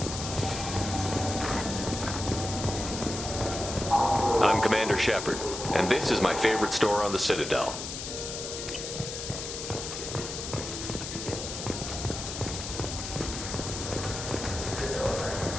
Commander Shepard, and this is my favorite store on the Citadel.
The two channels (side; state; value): left; noise; hiss, 6 dB below the sound